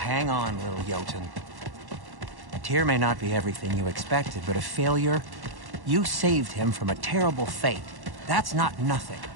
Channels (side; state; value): left; late; 1.1 ms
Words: on, little Jotun. Tyr may not be everything you expected, but a failure, you saved him from a terrible fate. That's not nothing.